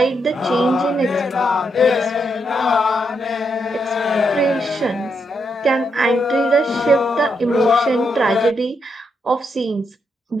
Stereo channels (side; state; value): both; normal; correlation 0.80